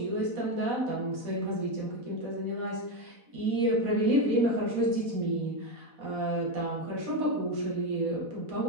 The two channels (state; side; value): late; left; 4.1 ms